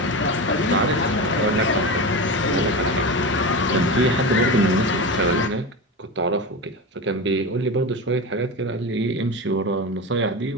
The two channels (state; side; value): normal; both; correlation 0.23